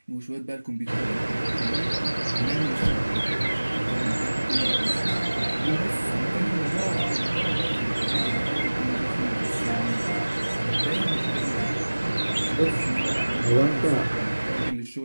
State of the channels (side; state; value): both; inverted; correlation -1.00